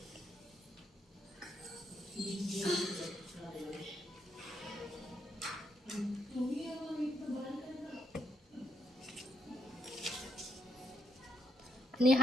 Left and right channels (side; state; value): both; normal; correlation 0.75